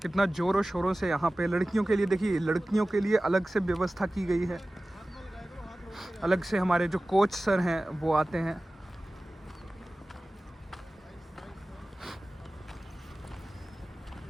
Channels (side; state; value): both; normal; correlation 0.97